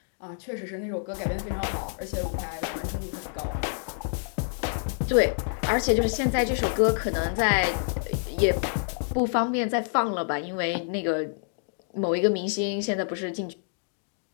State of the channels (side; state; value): right; silent; digital silence